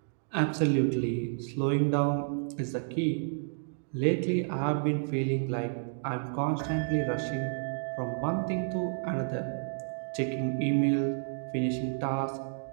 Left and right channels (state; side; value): silent; left; digital silence